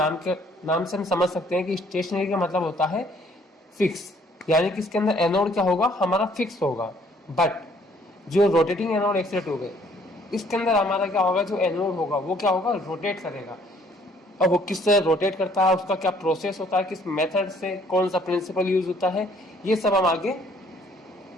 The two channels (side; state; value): both; normal; correlation 0.61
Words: से हम समझ सकते हैं कि स्टेशनरी का मतलब होता है फिक्स, यानी कि इसके अंदर एनोड क्या होगा, हमारा फिक्स होगा। बट जो रोटेटिंग एनोड एक्सरे ट्यूब है, इसके अंदर हमारा क्या होगा, जो एनोड होगा वो क्या होगा, रोटेट करेगा। अब वो किस तरह रोटेट करता है, उसका क्या प्रोसेस होता है, किस मेथड से, कौन सा प्रिंसिपल यूज होता है, ये सब हम आगे